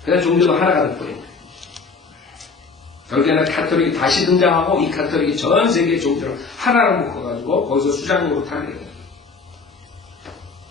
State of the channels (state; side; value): quieter; right; 4.6 dB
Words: 그래서 종교도 하나가 될거예요. 결국에는 카톨릭이 다시 등장하고 이 카톨릭이 전 세계 종교를 하나로 묶어가지고 거기서 수장으로 타게 돼요.